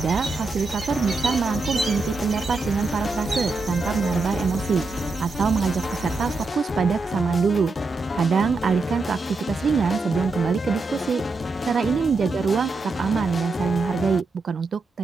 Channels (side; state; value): left; quieter; 3.6 dB